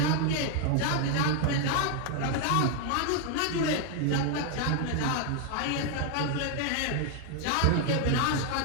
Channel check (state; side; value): different; both; correlation 0.00